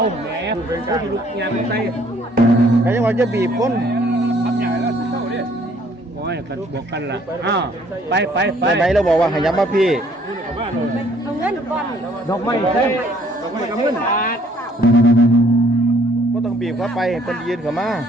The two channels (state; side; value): normal; both; correlation 0.62